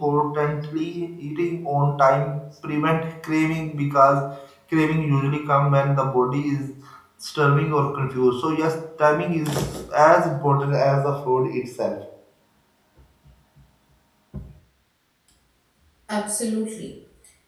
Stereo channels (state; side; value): identical; both; correlation 1.00